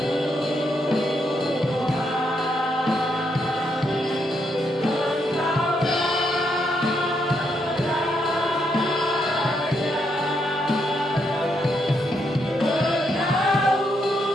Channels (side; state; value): both; normal; correlation 0.78